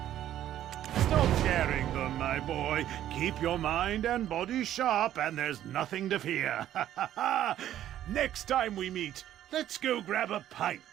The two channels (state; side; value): quieter; left; 11.9 dB